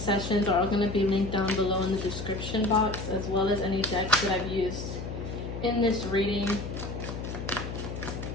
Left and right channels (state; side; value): noise; left; hum, 7 dB below the sound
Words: are all going to be linked down below in the description box, as well as any decks that I've used in this reading.